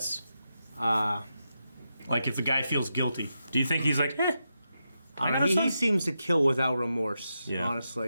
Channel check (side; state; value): both; inverted; correlation -0.87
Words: Like if the guy feels guilty. Do you think he's like, I don't know, he seems to kill without remorse,